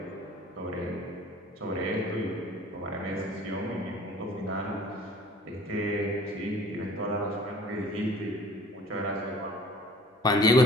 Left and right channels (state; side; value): normal; both; correlation 0.49